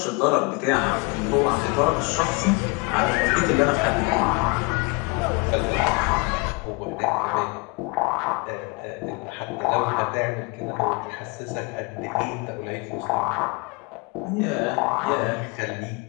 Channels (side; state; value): right; quieter; 29.0 dB